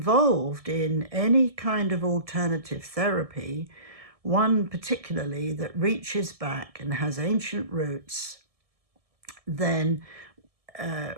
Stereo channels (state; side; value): late; left; 1.7 ms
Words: in any kind of alternative therapy, one particularly that reaches back and has ancient roots, then